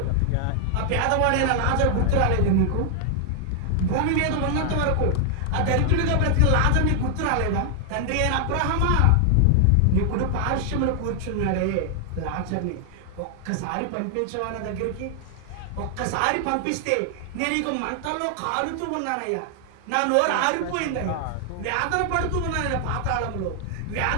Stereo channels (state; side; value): different; both; correlation 0.00